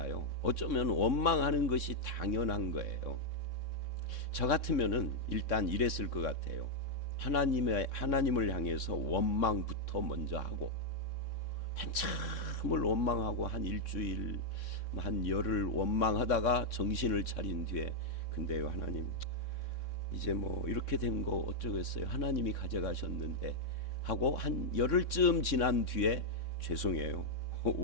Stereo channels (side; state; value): right; late; 3.6 ms